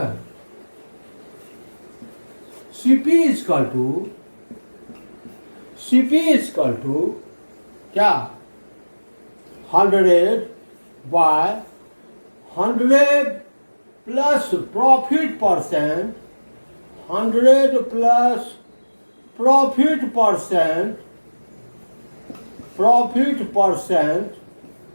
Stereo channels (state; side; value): inverted; both; correlation -1.00